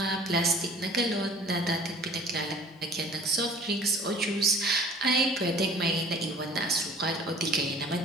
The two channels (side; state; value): both; normal; correlation 0.49